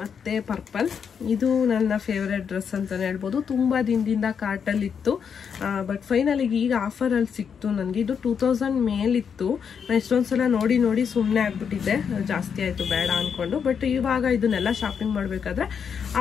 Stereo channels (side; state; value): right; quieter; 7.0 dB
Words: ಪರ್ಪಲ್. ಇದು ನನ್ನ ಫೇವ್ರೆಟ್ ಡ್ರೆಸ್ ಅಂತಲೇ ಹೇಳ್ಬೋದು. ತುಂಬ ದಿನದಿಂದ ಕಾರ್ಟಲ್ಲಿತ್ತು, ಬಟ್ ಫೈನಲಿಗೆ ಈಗ ಆಫರಲ್ಲಿ ಸಿಕ್ತು ನನಗೆ. ಇದು 2000 ಮೇಲಿತ್ತು. ನಾನು ಎಷ್ಟೊಂದು ಸಲ ನೋಡಿ ಸುಮ್ಮನೆ ಆಗ್ಬಿಟ್ಟಿದ್ದೆ, ಜಾಸ್ತಿ ಆಯಿತು ಬೇಡ ಅಂದ್ಕೊಂಡು. ಬಟ್ ಇವಾಗ ಇದನ್ನೆಲ್ಲ ಶಾಪಿಂಗ್ ಮಾಡಬೇಕಾದ್ರೆ